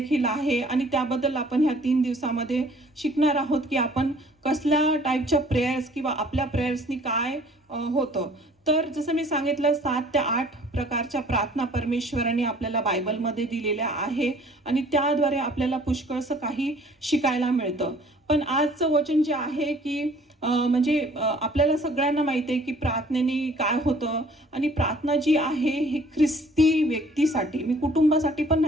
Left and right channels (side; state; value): both; normal; correlation 0.55